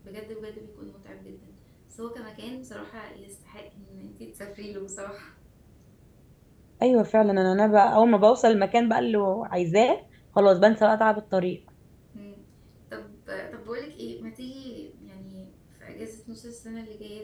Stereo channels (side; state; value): both; identical; correlation 1.00